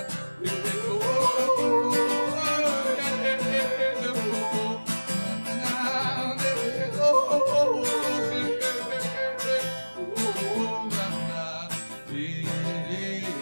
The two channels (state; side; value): inverted; both; correlation -1.00